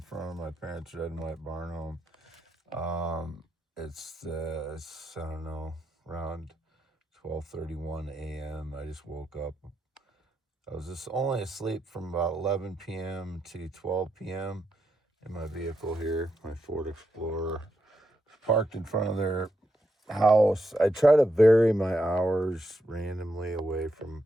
front of my parents' red and white barn home. It's I don't know, around 12:31 a.m. I just woke up. I was just only asleep from about 11 p.m. to 12 p.m. in my vehicle here, my Ford Explorer. It's parked in front of their house. I try to vary my hours randomly away from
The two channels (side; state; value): both; normal; correlation 0.83